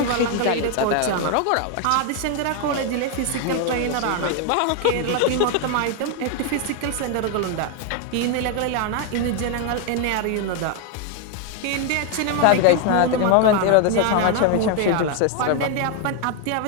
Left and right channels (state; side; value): different; both; correlation 0.01